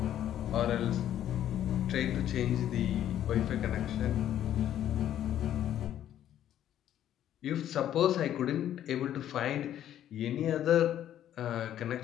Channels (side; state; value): right; quieter; 11.2 dB